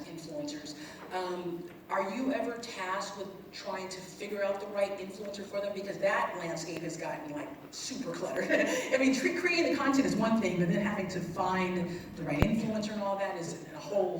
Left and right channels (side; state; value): both; identical; correlation 1.00